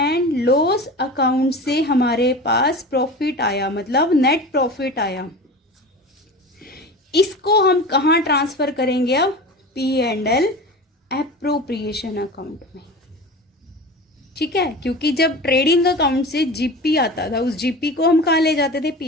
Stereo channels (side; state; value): both; normal; correlation 0.33